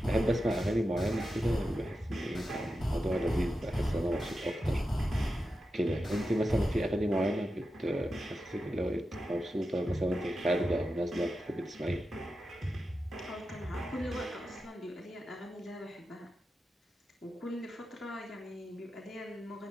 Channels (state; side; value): normal; both; correlation 0.90